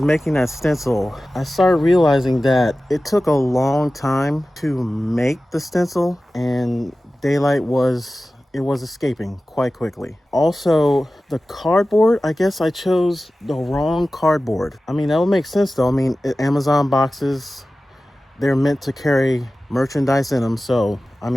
making that stencil, I started realizing that it took a long time to make the stencil, and daylight was escaping quite quickly. Also, the cardboard, I guess I chose the wrong cardboard. I mean, that would make sense though. I mean, Amazon boxes, they're meant to carry merchandise in them, so I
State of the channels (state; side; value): normal; both; correlation 0.96